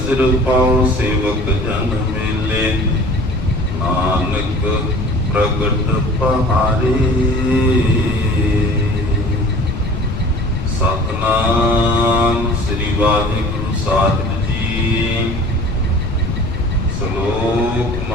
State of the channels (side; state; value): left; noise; rumble, 6 dB below the sound